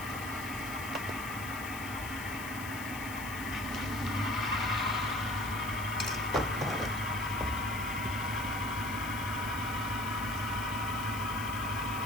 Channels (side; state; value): left; noise; hiss, 12 dB below the sound